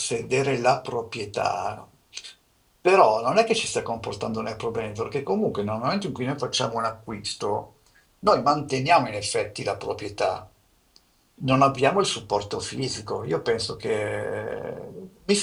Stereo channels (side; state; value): both; identical; correlation 1.00